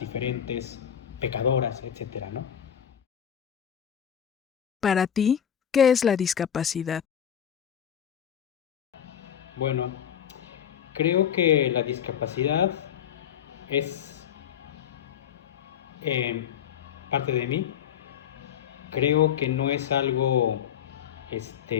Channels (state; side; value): quieter; right; 9.1 dB